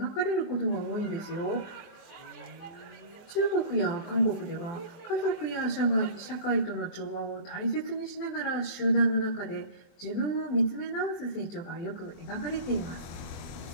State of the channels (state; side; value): late; right; 23 ms